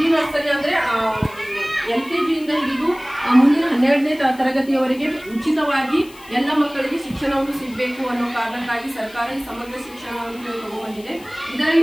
ನರ್ಸರಿ ಅಂದ್ರೆ LKG ಇಂದ ಹಿಡಿದು ಮುಂದಿನ 12ನೇ ತರಗತಿಯವರೆಗೆ ಉಚಿತವಾಗಿ ಎಲ್ಲ ಮಕ್ಕಳಿಗೆ ಶಿಕ್ಷಣವನ್ನು ಸಿಗಬೇಕು ಅನ್ನೋ ಕಾರಣಕ್ಕಾಗಿ ಸರ್ಕಾರ ಈ ಸಮಗ್ರ ಶಿಕ್ಷಣವನ್ನು ತಗೊಂಡ್ಬಂದಿದೆ.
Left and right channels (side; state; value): left; noise; hiss, 22 dB below the sound